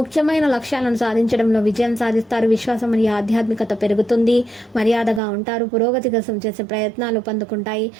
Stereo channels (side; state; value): left; drops out; at 5.2 s